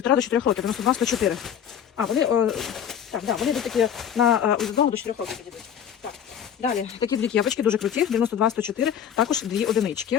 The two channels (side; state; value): right; quieter; 8.8 dB